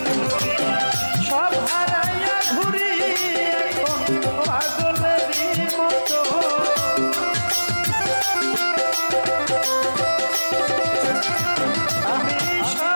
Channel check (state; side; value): inverted; both; correlation -1.00